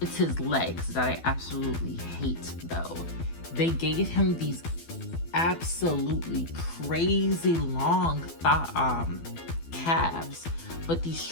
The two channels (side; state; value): right; late; 12 ms